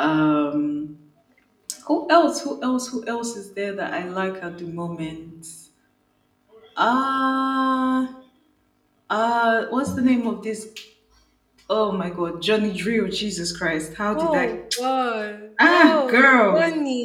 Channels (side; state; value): both; identical; correlation 1.00